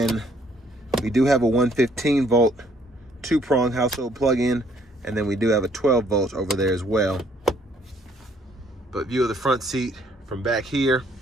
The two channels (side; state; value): both; normal; correlation 0.65